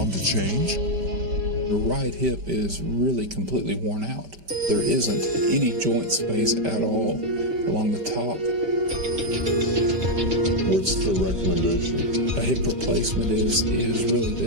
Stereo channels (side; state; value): left; late; 5.1 ms